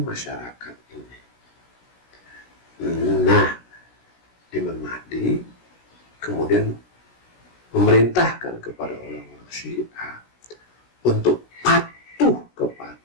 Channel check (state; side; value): late; right; 16 ms